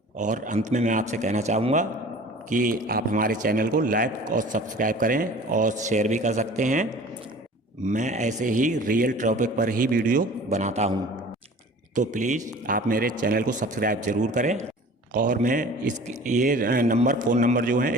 और अंत में मैं आपसे कहना चाहूँगा कि आप हमारे चैनल को लाइक और सब्सक्राइब करें और शेयर भी कर सकते हैं। मैं ऐसे ही रियल टॉपिक पर ही वीडियो बनाता हूँ, तो प्लीज़ आप मेरे चैनल को सब्सक्राइब ज़रूर करें। और मैं ये फ़ोन नंबर जो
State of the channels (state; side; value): normal; both; correlation 0.44